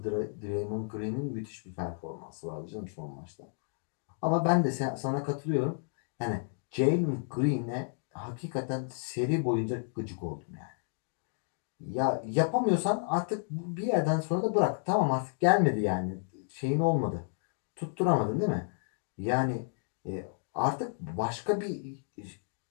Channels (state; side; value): silent; right; digital silence